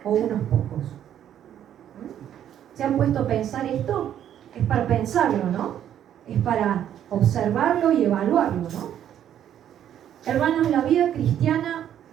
o unos pocos? ¿Se han puesto a pensar esto? Es para pensarlo, ¿no? Es para observarlo y evaluarlo, ¿no? Hermanos, la vida cristiana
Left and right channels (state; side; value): quieter; left; 10.4 dB